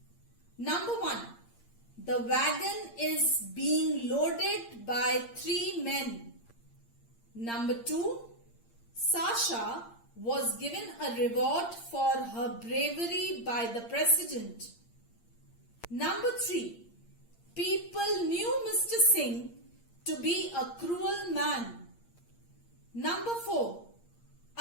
Number 1. The wagon is being loaded by 3 men. Number 2. Sasha was given a reward for her bravery by the president. Number 3. People knew Mr. Singh to be a cruel man. Number 4.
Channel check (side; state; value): right; late; 8.7 ms